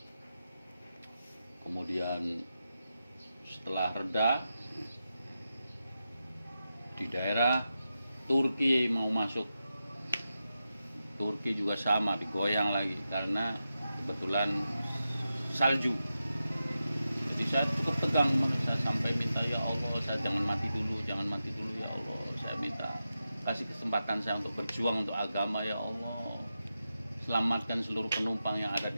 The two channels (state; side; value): inverted; both; correlation -0.90